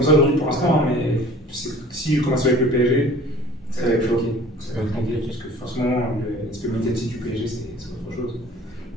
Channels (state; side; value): normal; both; correlation 0.47